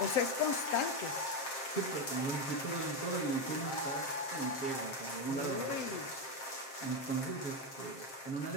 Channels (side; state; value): right; late; 7.6 ms